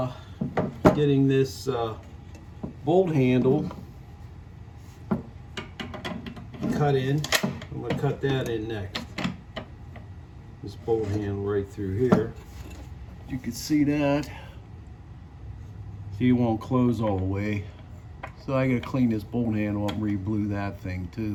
getting this bolt handle cut in. I'm going to cut that in next. This bolt handle right through here. You can see that. See, it won't close all the way. So I got to clean this bolt handle up and re-blue that thing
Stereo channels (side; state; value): both; identical; correlation 1.00